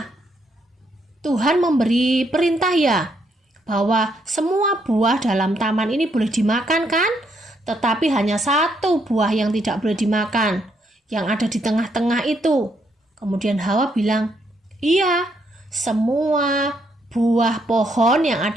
Tuhan memberi perintah ya bahwa semua buah dalam taman ini boleh dimakan kan? Tetapi hanya satu buah yang tidak boleh dimakan, yang ada di tengah-tengah itu. Kemudian Hawa bilang, iya, semua buah pohon yang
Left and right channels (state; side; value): normal; both; correlation 0.74